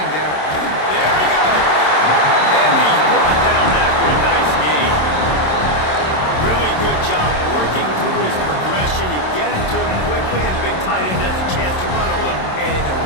down. There he goes. And he's brought down after a nice game. Really good job working through his progression. You get it to him quickly, and the big tight end has a chance to run a little. And a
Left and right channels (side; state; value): right; late; 27 ms